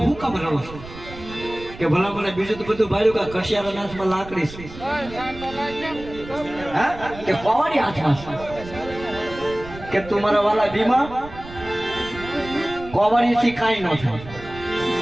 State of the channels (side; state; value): right; noise; rumble, 15 dB below the sound